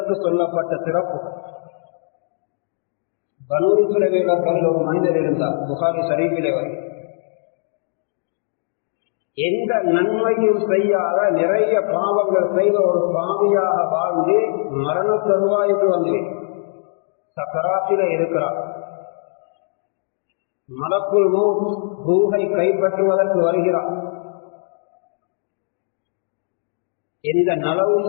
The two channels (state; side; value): silent; right; digital silence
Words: சொல்லப்பட்ட சிறப்பு. பனூ இஸ்ரவேலர்கள் ஒரு மனிதர் இருந்தார், புகாரி ஷரீஃபிலே வரை. எந்த நன்மையும் செய்யாத நிறைய பாவங்கள் செய்த ஒரு பாவியாக வாழ்ந்து மரண தருவாய்க்கு வந்து சக்கராத்திலே இருக்கிறார். மலக்குல் மௌத் ரூஹை கைப்பற்றுவதற்கு வருகிறார். எந்த